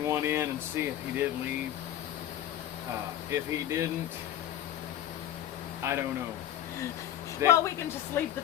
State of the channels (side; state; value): right; quieter; 11.7 dB